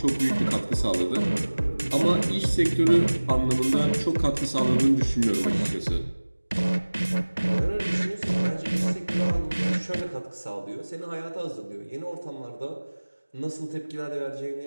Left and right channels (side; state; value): both; inverted; correlation -1.00